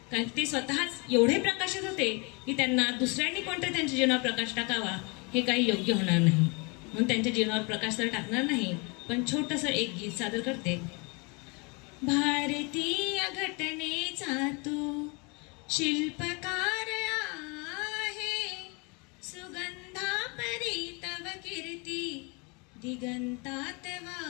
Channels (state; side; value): quieter; right; 30.5 dB